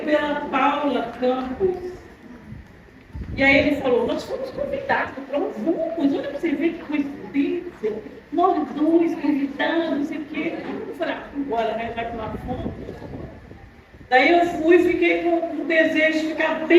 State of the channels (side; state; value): both; identical; correlation 1.00